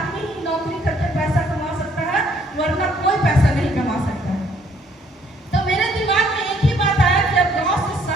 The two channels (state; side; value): normal; both; correlation 0.65